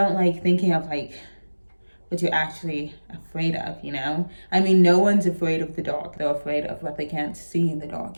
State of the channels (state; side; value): inverted; both; correlation -1.00